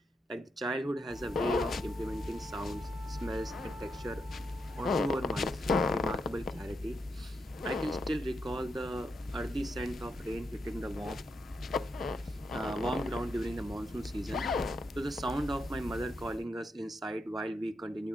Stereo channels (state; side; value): normal; both; correlation 0.82